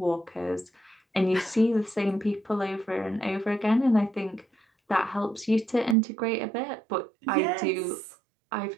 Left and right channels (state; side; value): drops out; left; at 6.0 s